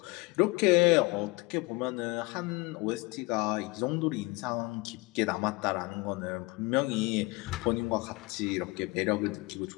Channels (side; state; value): right; quieter; 24.9 dB